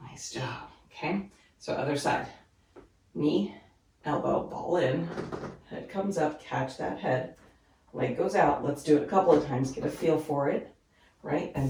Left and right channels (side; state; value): both; identical; correlation 1.00